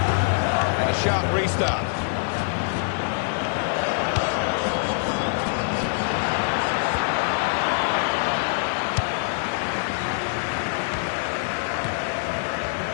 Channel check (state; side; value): silent; right; 60 dB below the other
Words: And a sharp restart.